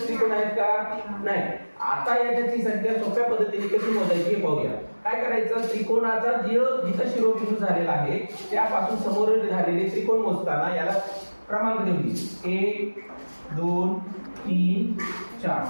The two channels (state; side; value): inverted; both; correlation -1.00